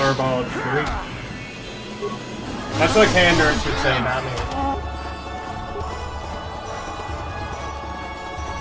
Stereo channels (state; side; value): identical; both; correlation 1.00